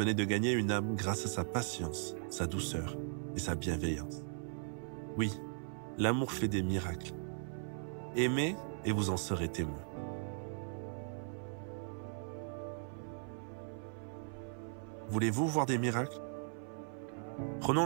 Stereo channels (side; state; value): left; silent; 52 dB below the other